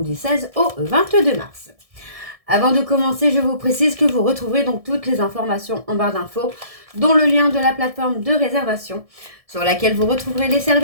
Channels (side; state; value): left; late; 1.7 ms